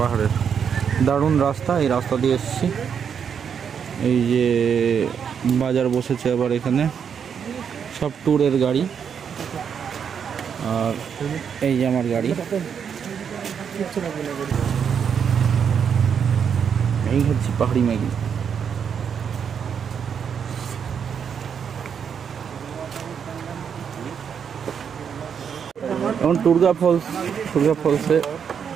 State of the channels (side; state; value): left; quieter; 7.3 dB